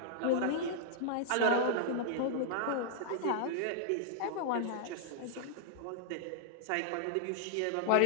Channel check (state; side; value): different; both; correlation -0.01